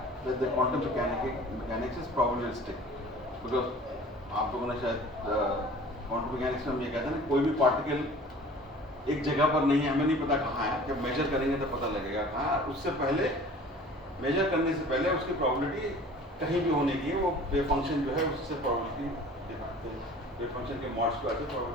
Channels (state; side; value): normal; both; correlation 0.45